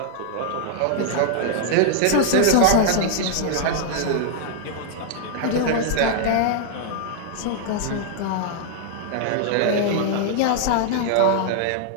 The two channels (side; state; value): both; different; correlation -0.01